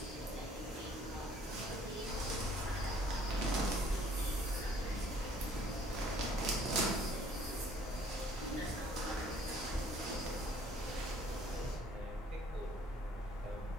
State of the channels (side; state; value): both; normal; correlation 0.59